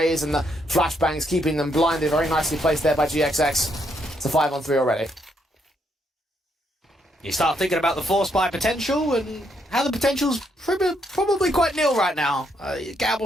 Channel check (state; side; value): normal; both; correlation 0.75